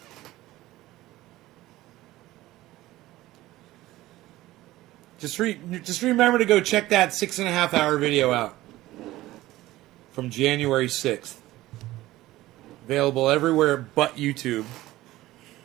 Just remember to go check that 6.5 hour video out from January 6th. Available everywhere but YouTube.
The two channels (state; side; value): quieter; left; 16.8 dB